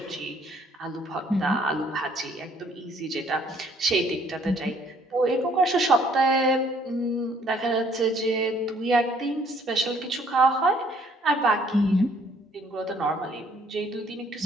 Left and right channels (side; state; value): both; normal; correlation 0.62